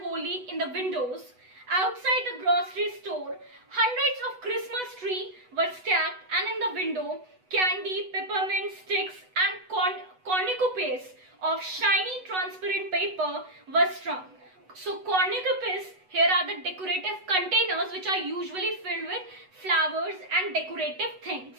holly in the windows. Outside the grocery store, hundreds of Christmas trees were stacked, and in the window, candy, peppermint sticks and cornucopias of shiny transparent paper were strung. So cornucopias here are the decorative containers which are usually filled with flowers and decorative things.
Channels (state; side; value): late; left; 8.1 ms